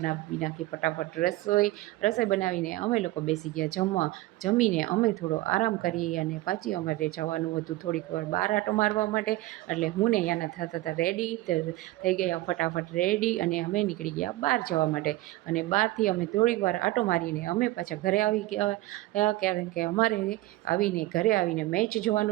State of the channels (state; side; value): quieter; left; 17.8 dB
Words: નાખી ફટાફટ રસોઈ બનાવીને અમે લોકો બેસી ગયા જમવા. જમીને અમે થોડો આરામ કરી અને પાછી અમારે જવાનું હતું થોડીક વાર બહાર આટો મારવા માટે. એટલે હું ને યાના થતા હતા રેડી, થઈ ગયા ફટાફટ રેડી અને અમે નીકળી ગયા બહાર જવા માટે. અને બહારથી અમે થોડીક વાર આટો મારીને અમે પાછા ઘરે આવી ગયા, કારણ કે અમારે ઘરે આવીને મેચ